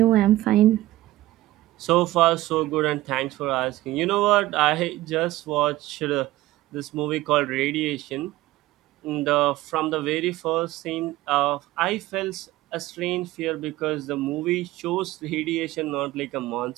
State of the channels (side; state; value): left; quieter; 16.7 dB